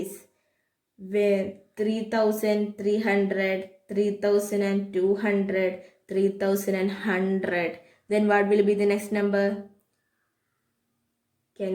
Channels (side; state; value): both; identical; correlation 1.00